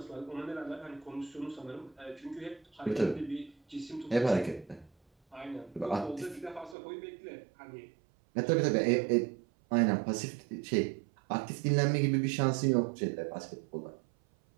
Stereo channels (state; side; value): drops out; left; at 6.8 s